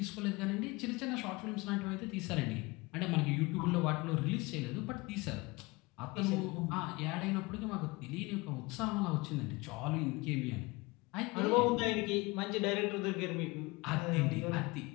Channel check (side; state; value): right; quieter; 23.9 dB